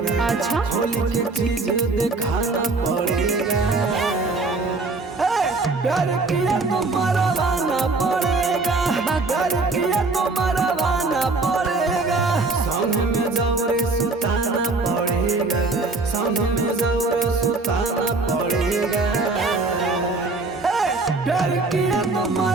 अच्छा, होली के चीज दिखाना पड़ेगा। प्यार किया तो मरवाना पड़ेगा। प्यार किया तो मरवाना पड़ेगा। संग में जबरे सुताना पड़ेगा। संग में जबरे सुताना पड़ेगा। प्यार किया तो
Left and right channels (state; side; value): quieter; left; 3.6 dB